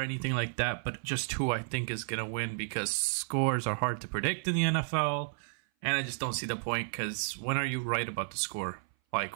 like that, but just who I think is going to win because scores are hard to predict in the NFL. And I just don't see the point because when are you right about the score?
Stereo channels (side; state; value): left; silent; 56 dB below the other